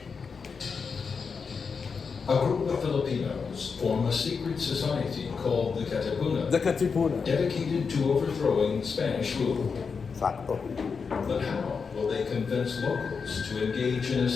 A group of Filipinos form a secret society called the Katipunan, dedicated to overthrowing Spanish rule. Sakto. But how will they convince locals to engage in a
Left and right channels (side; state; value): right; quieter; 5.5 dB